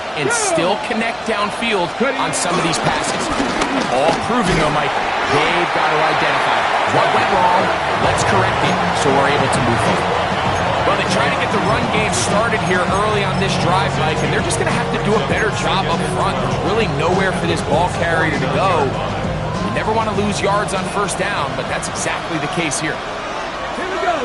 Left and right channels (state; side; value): identical; both; correlation 1.00